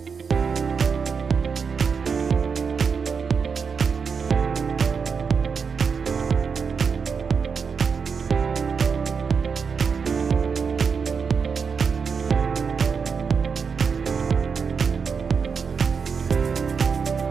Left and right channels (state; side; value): quieter; left; 5.8 dB